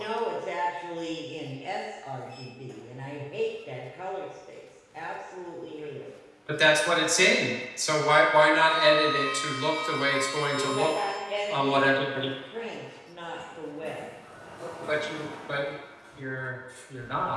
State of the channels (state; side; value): identical; both; correlation 1.00